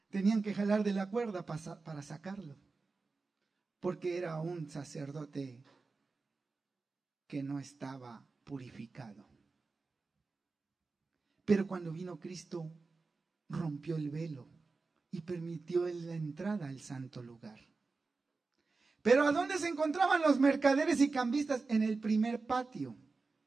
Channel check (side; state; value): left; quieter; 4.0 dB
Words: tenían que jalar de la cuerda para sacarlo. Porque era un sacerdote que no estaba purificado. Pero cuando vino Cristo, rompió el velo y permitió la entrada al santo lugar. Pero ¿a dónde se encontraban los mercaderes y cambistas? En el primer patio,